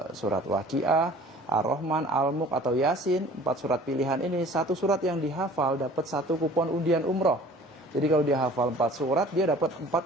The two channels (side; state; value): both; normal; correlation 0.48